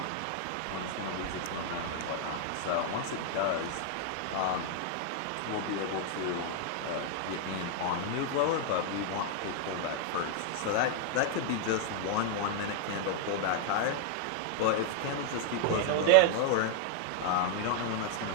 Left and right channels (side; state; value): both; different; correlation 0.00